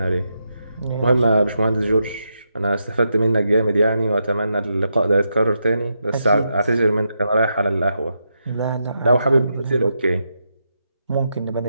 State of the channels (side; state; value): both; inverted; correlation -0.84